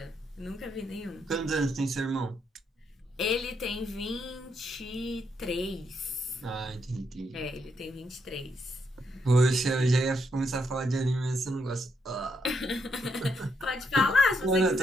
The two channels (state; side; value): normal; both; correlation 0.78